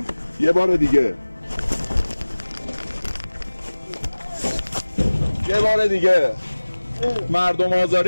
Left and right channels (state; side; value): inverted; both; correlation -1.00